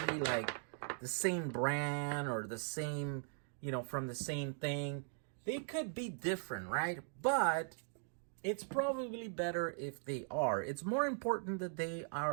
the same brand or the same, from the same thing. They could be different, right? But it's probably better if they are. It's more important that they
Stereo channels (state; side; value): silent; left; digital silence